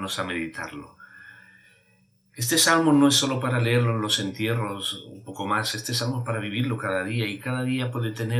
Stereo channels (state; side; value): identical; both; correlation 1.00